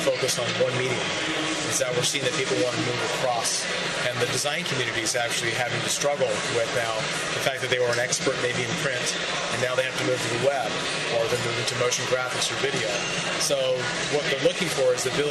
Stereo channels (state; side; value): identical; both; correlation 1.00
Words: focus on one medium. Is that we're seeing that people want to move across, and the design community is actually having to struggle with now the fact that they were an expert maybe in print, and now they have to move to the web, or they're moving to motion graphics or video. So what they're looking for is the